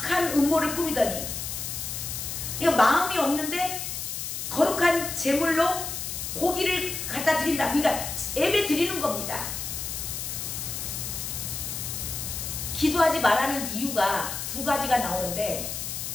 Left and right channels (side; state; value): left; noise; hiss, 5 dB below the sound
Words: 음모를 꾸미더니, 이거 마음이 없는데 거룩한 제물로 고기를 갖다 드린다. 그러니까 예배 드리는 겁니다. 기도하지 말라는 이유가 두 가지가 나오는데,